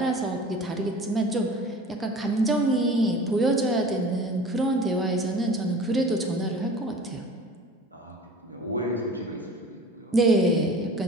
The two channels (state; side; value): normal; both; correlation 0.42